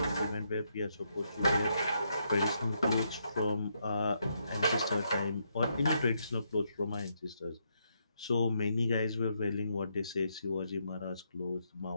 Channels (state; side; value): inverted; both; correlation -0.78